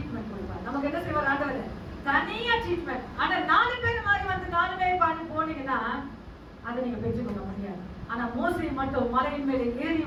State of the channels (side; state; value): both; identical; correlation 1.00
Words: கொடுப்பார். நமக்கு என்ன செய்வார் ஆண்டவர்? தனியா ட்ரீட்மெண்ட். ஆனா 4 பேர் மாதிரி வந்து 4 பேர் பாடி போனீங்கன்னா அதை நீங்க பெற்றுக்கொள்ள முடியாது. ஆனா மோசே மட்டும் மலையின் மேலே ஏறி